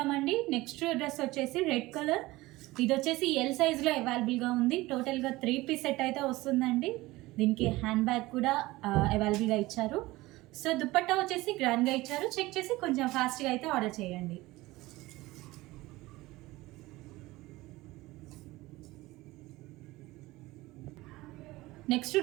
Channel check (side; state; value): left; quieter; 19.4 dB